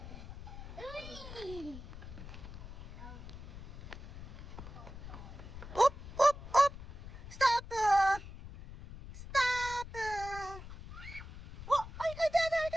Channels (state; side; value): noise; left; rumble, 12 dB below the sound